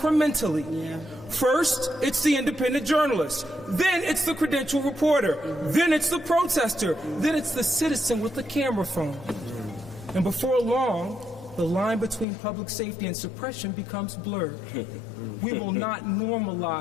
First, it's the independent journalist. Then it's the credentialed reporter. Then it's the protester. Then it's the citizen with the camera phone. And before long, the line between public safety and suppression becomes blurred. We will not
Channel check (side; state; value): right; drops out; at 12.2 s